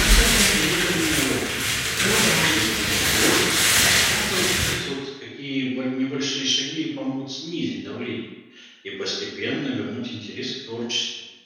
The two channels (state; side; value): identical; both; correlation 1.00